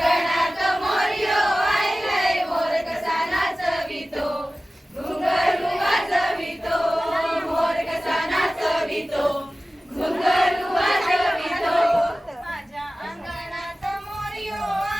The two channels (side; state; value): both; normal; correlation 0.96